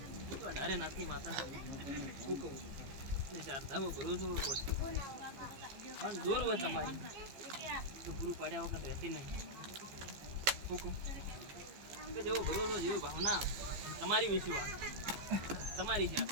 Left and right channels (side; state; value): left; late; 14 ms